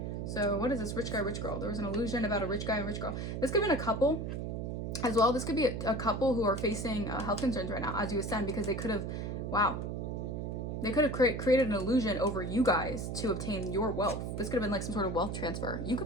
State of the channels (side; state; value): right; noise; hum, 4 dB below the sound